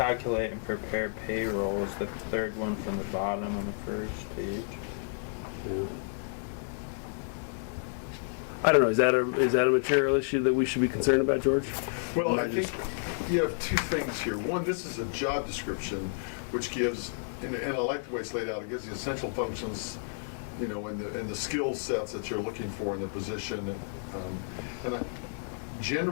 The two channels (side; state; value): right; silent; 57 dB below the other